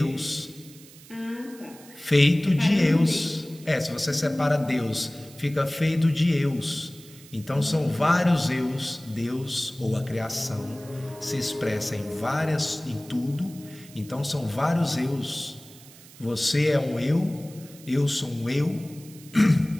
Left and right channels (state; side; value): noise; right; hiss, 21 dB below the sound